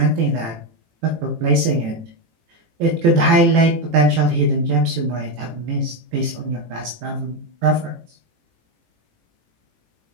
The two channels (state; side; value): late; left; 18 ms